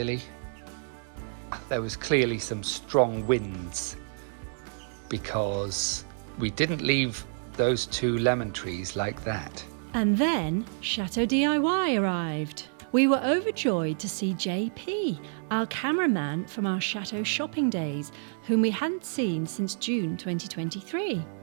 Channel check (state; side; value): silent; left; digital silence